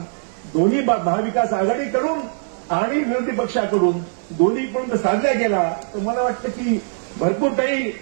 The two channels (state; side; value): silent; left; digital silence